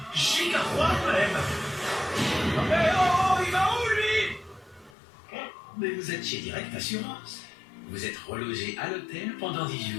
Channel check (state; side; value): drops out; right; at 5.0 s